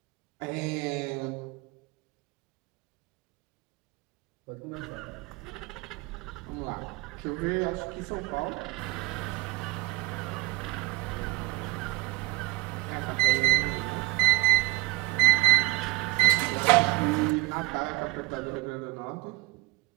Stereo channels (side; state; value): left; quieter; 22.0 dB